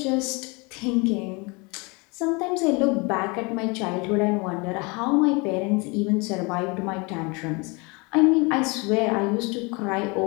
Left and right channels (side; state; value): right; quieter; 28.5 dB